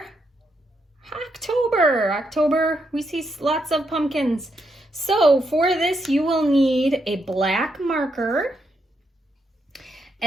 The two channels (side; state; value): both; normal; correlation 0.80